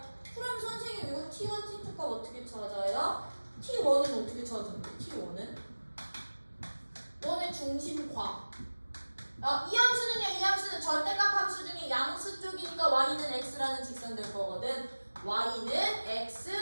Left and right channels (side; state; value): both; inverted; correlation -1.00